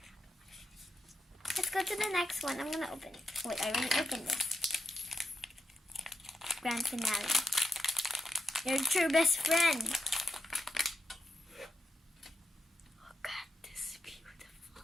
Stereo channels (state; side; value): normal; both; correlation 0.87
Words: Let's go to the next one. I'm going to open it. Wait, I already opened this. Grand finale. Your true best friend. Look at this beautiful.